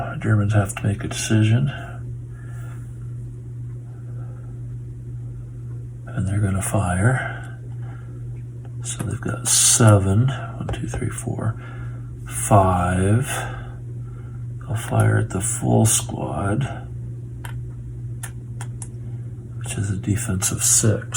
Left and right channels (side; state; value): both; identical; correlation 1.00